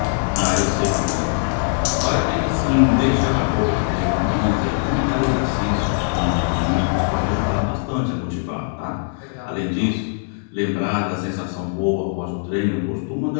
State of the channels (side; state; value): right; silent; digital silence